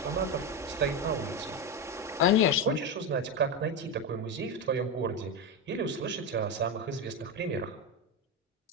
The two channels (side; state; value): both; normal; correlation 0.13